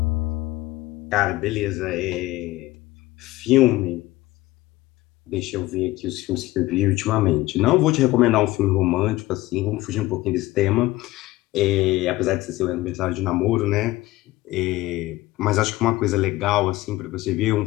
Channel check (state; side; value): quieter; right; 18.1 dB